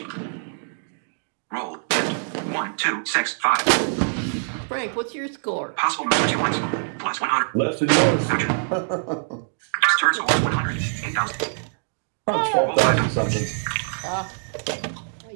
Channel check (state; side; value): silent; left; digital silence